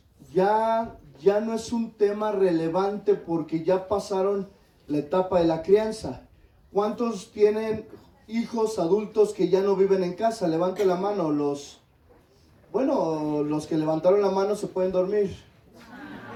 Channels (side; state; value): both; identical; correlation 1.00